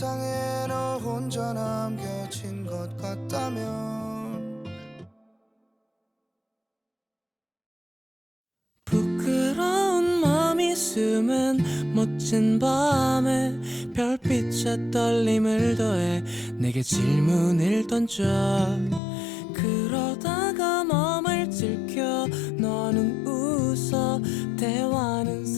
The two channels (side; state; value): right; drops out; at 19.0 s